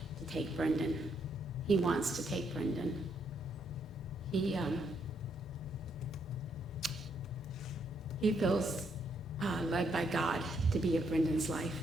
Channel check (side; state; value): both; normal; correlation 0.75